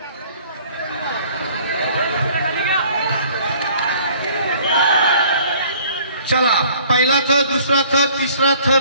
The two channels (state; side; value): inverted; both; correlation -0.55